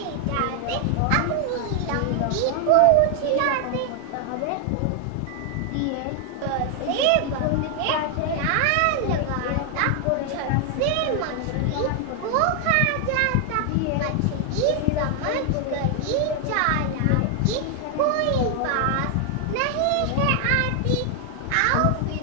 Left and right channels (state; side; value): different; both; correlation 0.00